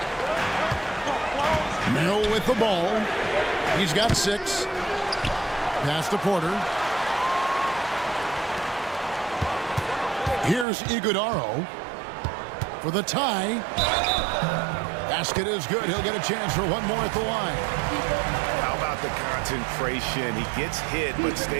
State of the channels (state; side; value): drops out; left; at 10.7 s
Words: Merrill with the ball. He's got 6. Pass to Porter. Here's Iguodaro for the tie. Basket is good. He'll get a chance for one more at the line. How about the concentration? He gets hit but